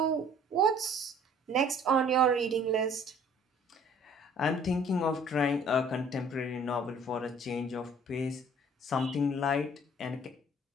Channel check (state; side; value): normal; both; correlation 0.54